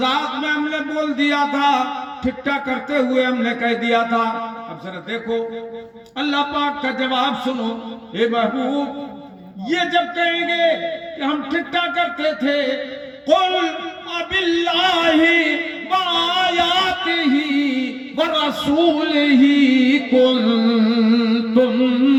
میں ہم نے بول دیا تھا، ٹھٹھا کرتے ہوئے ہم نے کہہ دیا تھا۔ اب ذرا دیکھو اللہ پاک کا جواب سنو۔ اے محبوب یہ جب کہیں گے کہ ہم ٹھٹھا کرتے تھے، قُلْ أَبِاللَّهِ وَآيَاتِهِ وَرَسُولِهِ كُنْتُمْ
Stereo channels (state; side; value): identical; both; correlation 1.00